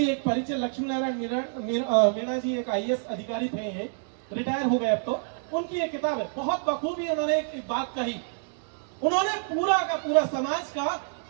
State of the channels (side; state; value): left; silent; digital silence